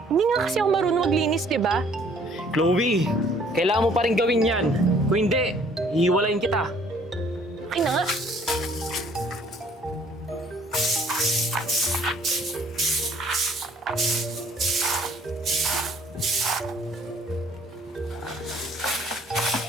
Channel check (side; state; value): both; normal; correlation 0.59